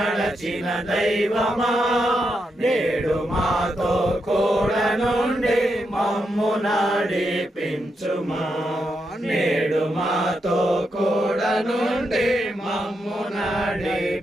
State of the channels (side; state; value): both; normal; correlation 0.83